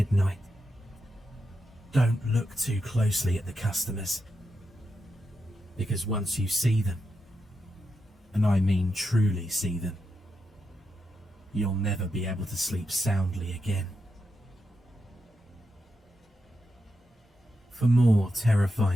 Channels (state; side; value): normal; both; correlation 0.86